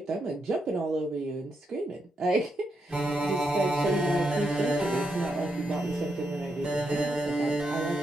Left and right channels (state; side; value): normal; both; correlation 0.82